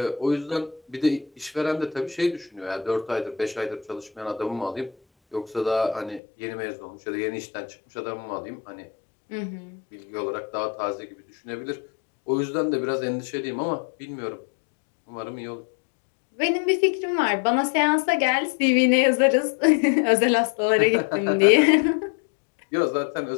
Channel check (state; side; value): drops out; right; at 6.2 s